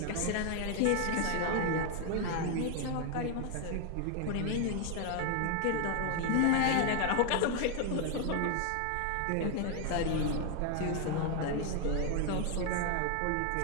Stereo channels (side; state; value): both; different; correlation 0.00